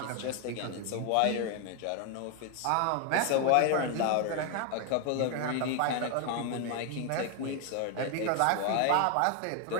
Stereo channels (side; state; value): both; different; correlation 0.01